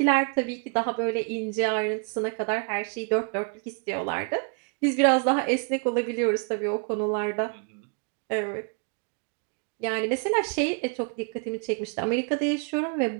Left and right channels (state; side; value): quieter; left; 40.0 dB